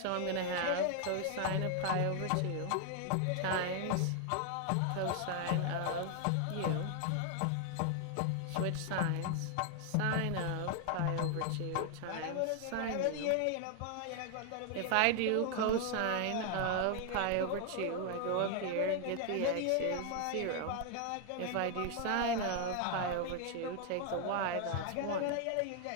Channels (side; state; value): both; different; correlation 0.00